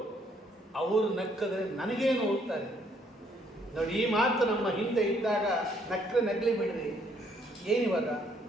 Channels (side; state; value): both; normal; correlation 0.68